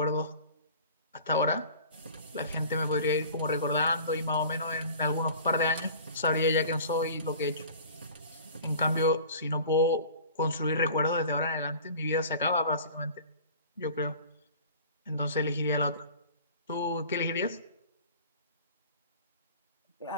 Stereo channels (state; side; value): inverted; both; correlation -0.43